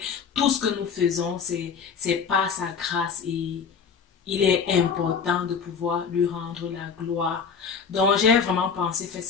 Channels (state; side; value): quieter; right; 6.2 dB